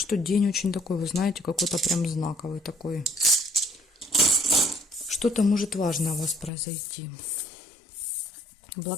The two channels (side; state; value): right; drops out; at 6.5 s